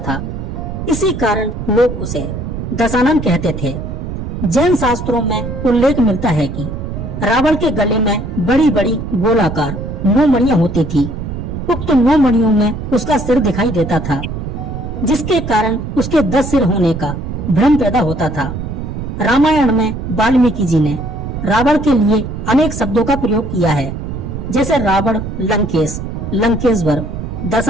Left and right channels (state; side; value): noise; right; rumble, 6 dB below the sound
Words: इसी कारण लोग उसे दशानन कहते थे। जैन शास्त्रों में उल्लेख मिलता है कि रावण के गले में बड़ी बड़ी गोलाकार 9 मणियां होती थी। उक्त 9 मणियों में उसका सिर दिखाई देता था, जिसके कारण उसके 10 सिर होने का भ्रम पैदा होता था। रामायण में वाल्मीकि जी ने रावण के लिए अनेक शब्दों का प्रयोग किया है, जैसे रावण, लंकेश, लंकेश्वर,